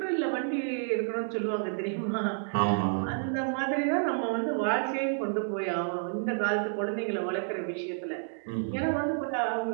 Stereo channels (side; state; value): left; silent; digital silence